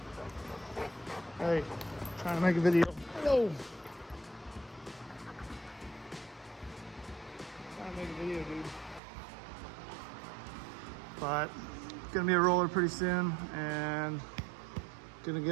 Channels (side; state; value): left; drops out; at 9.0 s